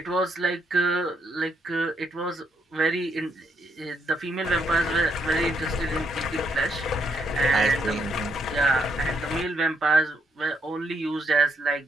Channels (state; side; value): normal; both; correlation 0.76